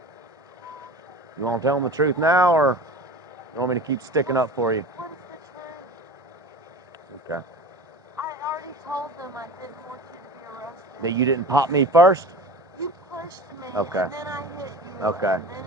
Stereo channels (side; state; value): both; normal; correlation 0.35